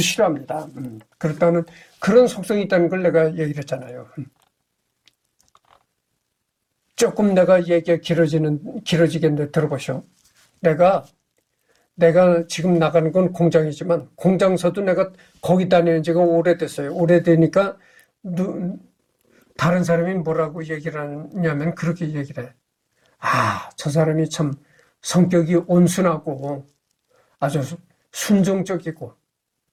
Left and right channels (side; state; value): both; identical; correlation 1.00